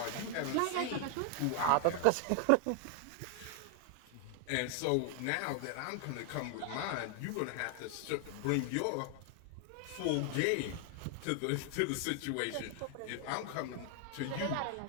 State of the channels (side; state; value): both; different; correlation 0.00